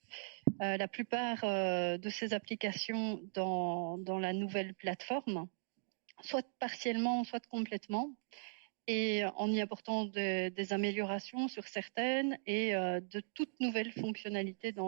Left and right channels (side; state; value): left; silent; digital silence